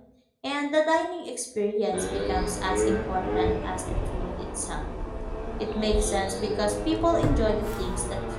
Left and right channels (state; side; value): identical; both; correlation 1.00